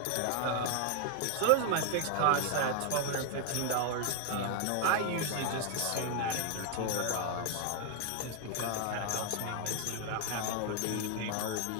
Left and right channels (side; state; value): both; different; correlation 0.00